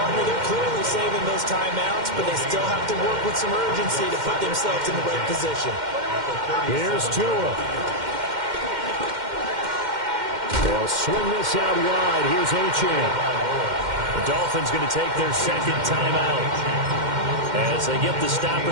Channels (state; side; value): late; left; 2.1 ms